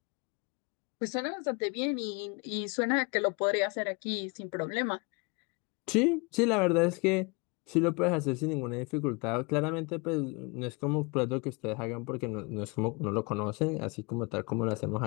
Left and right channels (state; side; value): quieter; right; 29.6 dB